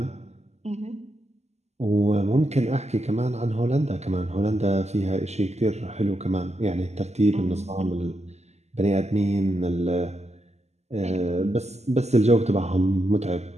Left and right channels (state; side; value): late; left; 0.32 ms